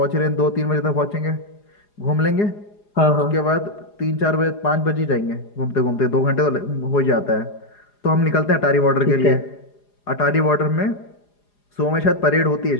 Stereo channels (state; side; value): late; right; 4.9 ms